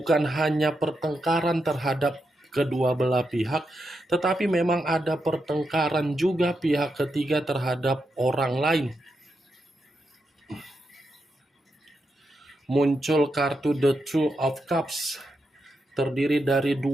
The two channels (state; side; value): normal; both; correlation 0.85